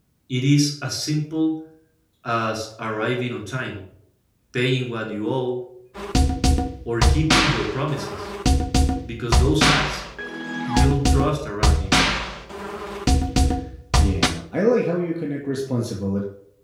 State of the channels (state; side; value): identical; both; correlation 1.00